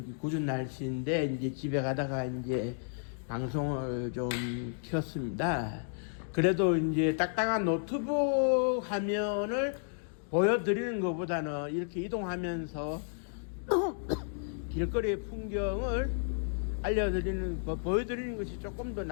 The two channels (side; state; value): right; silent; digital silence